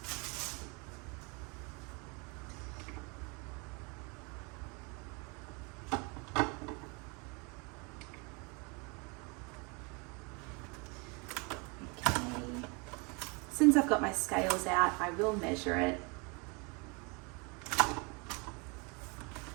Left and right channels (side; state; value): left; quieter; 30.7 dB